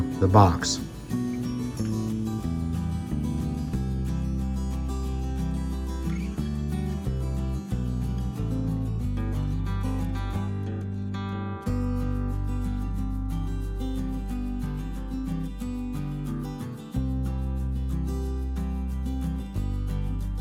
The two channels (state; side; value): identical; both; correlation 1.00